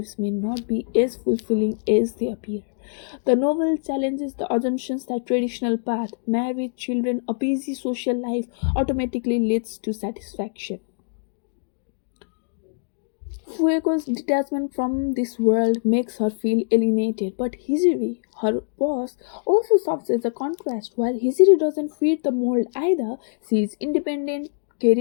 may not be as fulfilling as they appear. The novel challenges the assumptions that traditional path, marriage, children, a busy social life automatically leads to satisfaction. Fuego's detachment from this world makes her feel alienated, but Hijiri, her boss, also serves as a contrast. While Hijiri doesn't fit the mold either, she is independent,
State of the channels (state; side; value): silent; right; digital silence